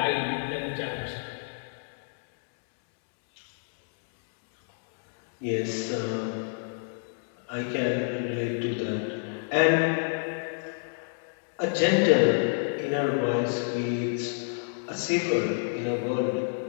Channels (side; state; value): right; silent; digital silence